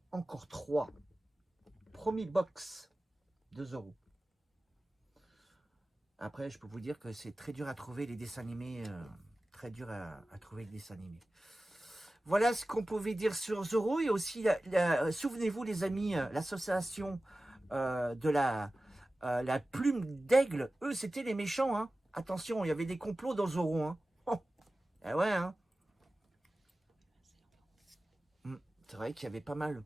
encore 3. Premier box de Zoro. Après, je peux vous dire que c'est très dur à trouver les dessins animés. Très dur à trouver les dessins animés. Voilà ce qu'on pouvait dire sur Zoro. Et aussi, souvenez-vous les amis, l'association de la plume d'aigle. Eux, c'était les méchants. Hein. Attention, il y avait des complots dans Zoro. Hein. Oh. Ah ouais, hein. C'est vrai qu'il y avait pas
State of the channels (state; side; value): normal; both; correlation 0.96